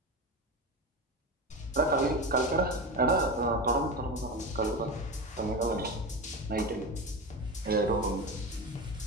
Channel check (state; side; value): normal; both; correlation 0.23